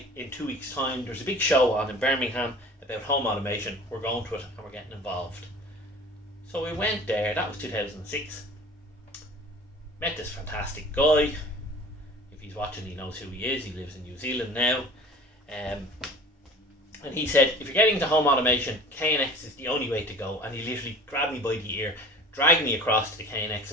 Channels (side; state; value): both; normal; correlation 0.42